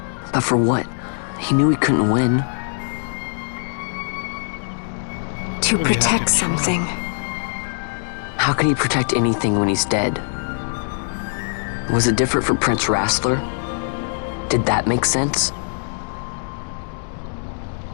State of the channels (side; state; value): right; silent; digital silence